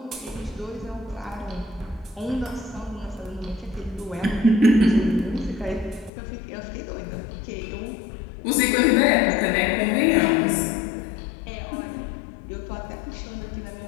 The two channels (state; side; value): drops out; right; at 6.1 s